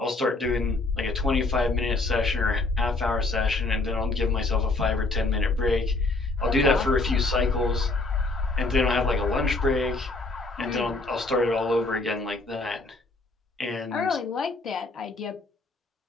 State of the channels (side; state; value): right; quieter; 3.3 dB